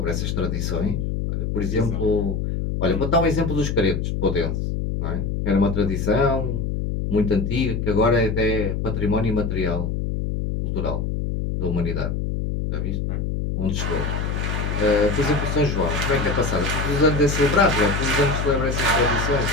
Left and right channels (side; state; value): left; noise; hum, 1 dB below the sound